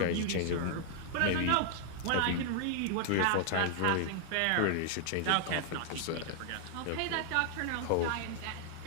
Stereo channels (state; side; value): different; both; correlation 0.00